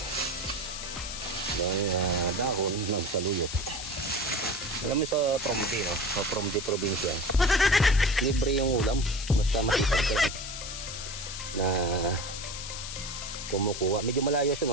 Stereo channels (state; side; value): noise; left; hiss, 8 dB below the sound